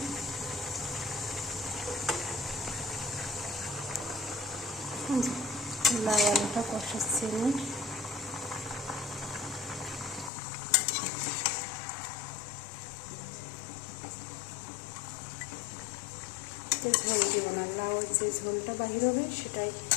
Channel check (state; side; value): drops out; right; at 10.3 s